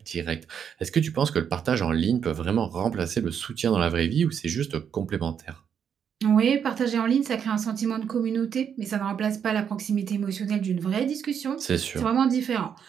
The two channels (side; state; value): left; quieter; 7.8 dB